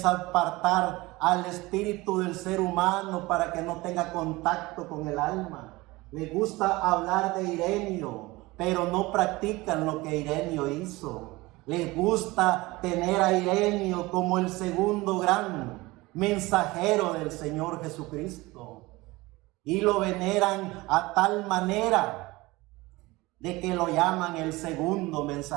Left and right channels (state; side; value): quieter; left; 21.2 dB